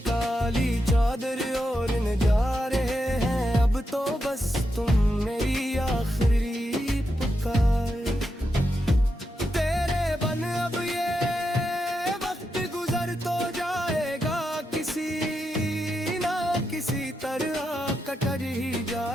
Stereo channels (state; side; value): normal; both; correlation 0.85